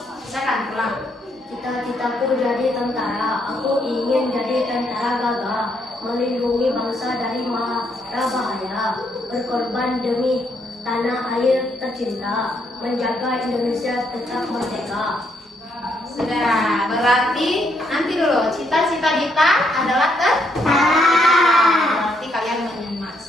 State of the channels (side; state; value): both; normal; correlation 0.74